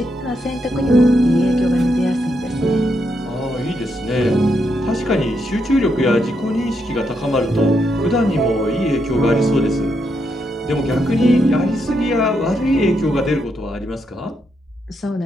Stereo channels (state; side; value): normal; both; correlation 0.80